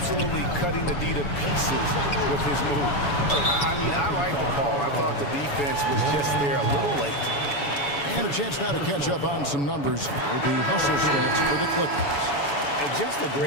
cutting the D to pieces with his move. I mean, I like the call. I thought the defense was just there a little late. And a chance now to catch up on some numbers with the hustle stats for the Clippers. And just a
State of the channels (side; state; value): right; late; 7.0 ms